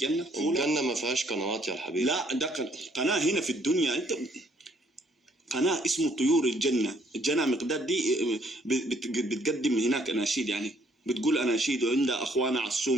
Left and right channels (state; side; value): normal; both; correlation 0.65